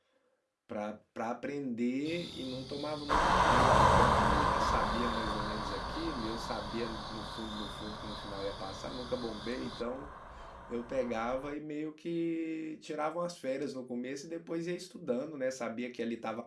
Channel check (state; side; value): identical; both; correlation 1.00